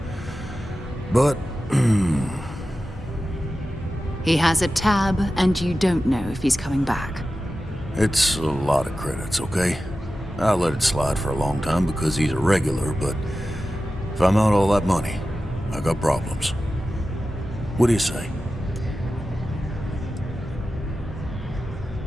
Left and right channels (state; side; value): normal; both; correlation 0.94